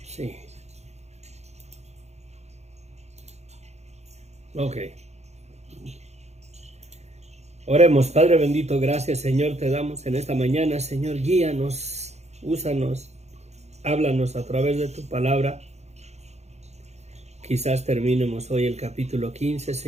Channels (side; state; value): left; late; 0.32 ms